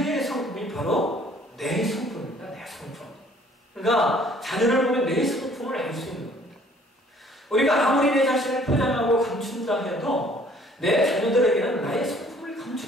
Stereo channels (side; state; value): both; normal; correlation 0.57